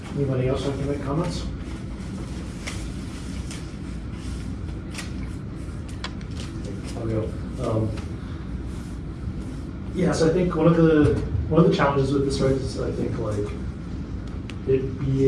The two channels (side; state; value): both; identical; correlation 1.00